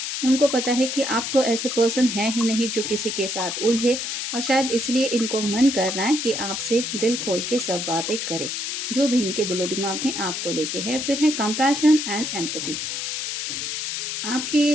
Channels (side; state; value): left; noise; hiss, 3 dB below the sound